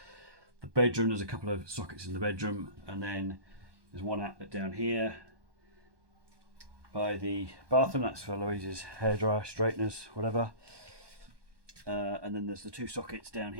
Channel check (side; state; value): left; late; 1.2 ms